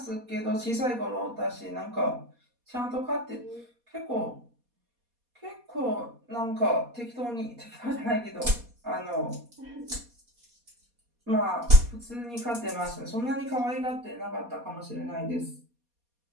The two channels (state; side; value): late; left; 4.2 ms